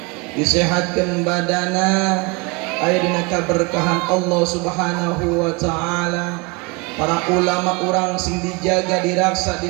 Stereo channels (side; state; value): left; quieter; 28.0 dB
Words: disehatkeun badana aya dina kaberkahan Allah Subhanahu wa taala para ulama urang sing dijaga diraksa